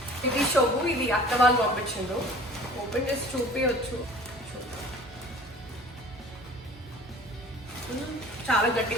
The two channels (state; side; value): normal; both; correlation 0.46